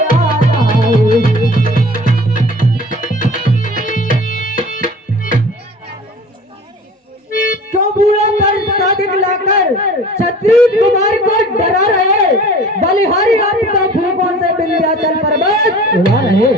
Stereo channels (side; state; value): both; normal; correlation 0.43